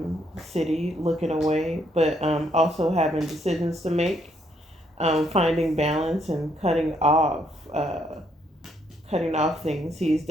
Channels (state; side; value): normal; both; correlation 0.71